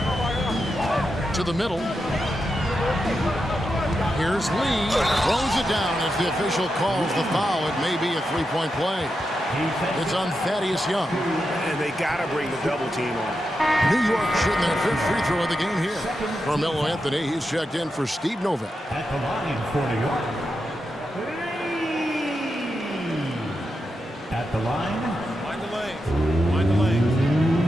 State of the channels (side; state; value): both; normal; correlation 0.87